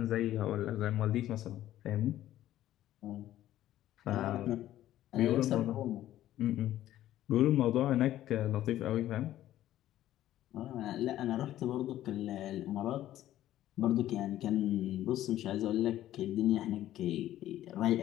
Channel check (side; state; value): right; quieter; 13.3 dB